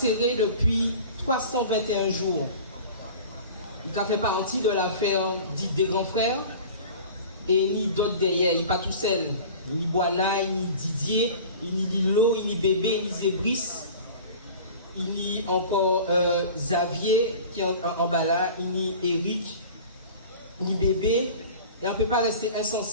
depuis 321 jours. Il a fait partie de l'affaire dite des grands frères et ni d'autres derrière. Il n'est pas tout seul. Ni Boana, ni Didier, ni Lilo, ni Bébé, ni Zébris. Il y a encore Xavier qui est en bas là, ni Eric, ni Bébé. Et on ne peut pas rester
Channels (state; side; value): inverted; both; correlation -0.40